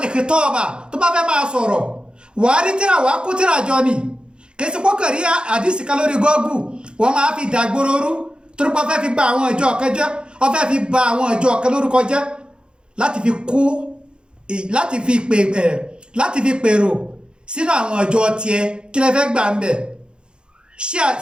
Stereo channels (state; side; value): late; left; 0.051 ms